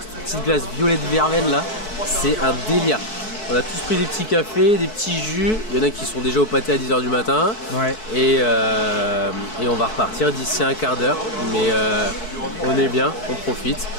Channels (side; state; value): right; late; 4.6 ms